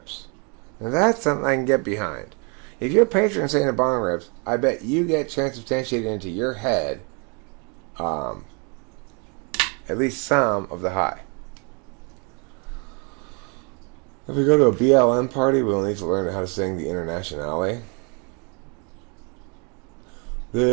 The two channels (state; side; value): quieter; left; 34.5 dB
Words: Now that's something I can get behind. If you're patron saint of bong rips, I bet you get transubstantiated into your head at least some of the high. If we go to a BLM party, we'll need to learn how to sing the Internationale.